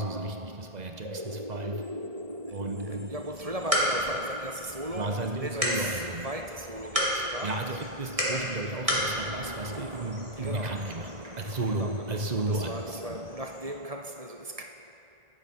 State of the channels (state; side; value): late; left; 1.6 ms